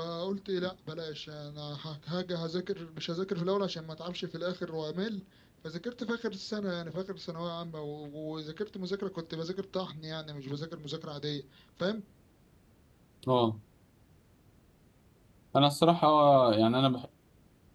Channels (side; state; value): both; identical; correlation 1.00